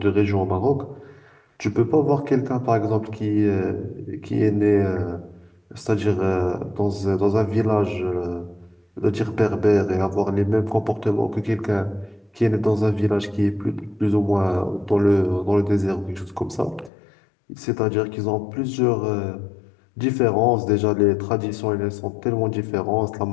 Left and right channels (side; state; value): right; drops out; at 16.9 s